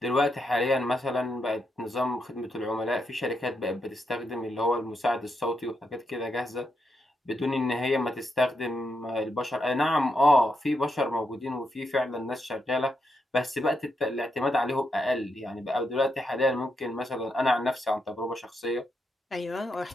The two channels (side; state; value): both; normal; correlation 0.82